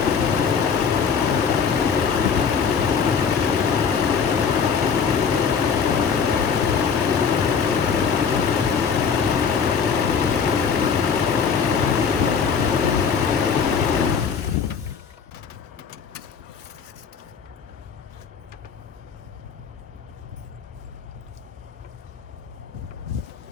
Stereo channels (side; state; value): right; quieter; 6.3 dB